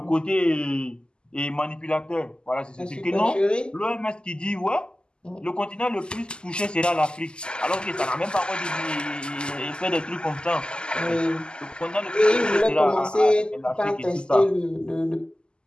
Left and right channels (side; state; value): right; late; 0.048 ms